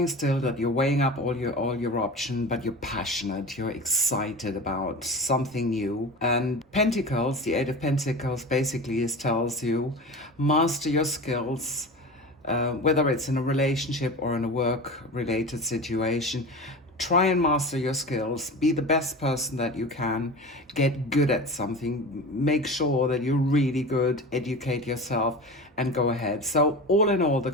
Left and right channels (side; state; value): both; normal; correlation 0.31